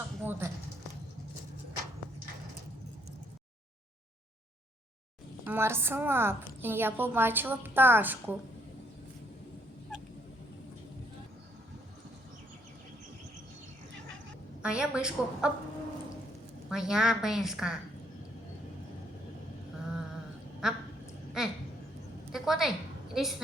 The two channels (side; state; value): both; normal; correlation 0.69